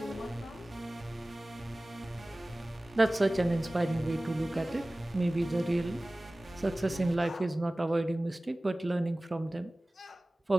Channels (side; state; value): both; normal; correlation 0.98